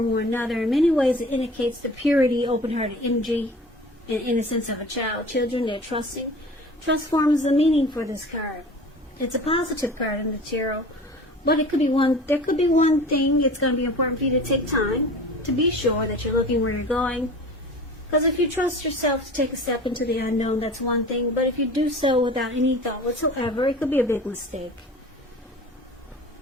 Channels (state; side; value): normal; both; correlation 0.40